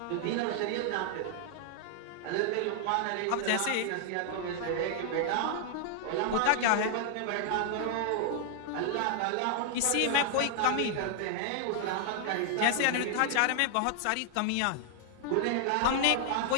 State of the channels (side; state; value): both; different; correlation 0.00